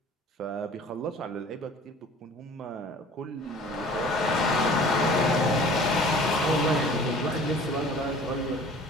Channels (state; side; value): normal; both; correlation 0.47